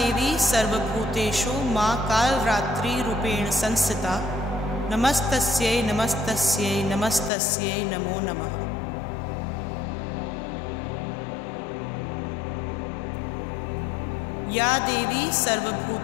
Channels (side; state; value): right; drops out; at 7.3 s